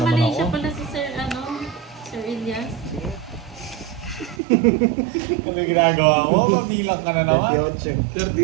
Malaysia ako. pala si Sir, Sir Elias. Ano yung ginagawa mo? Mabilang ka na naman.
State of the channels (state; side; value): drops out; left; at 4.4 s